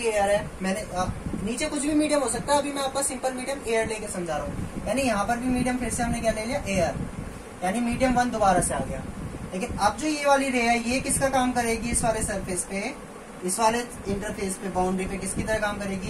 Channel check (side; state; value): both; identical; correlation 1.00